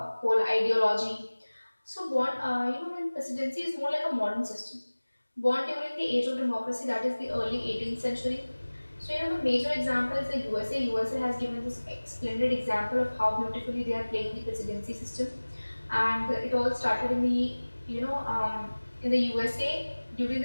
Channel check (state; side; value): inverted; both; correlation -1.00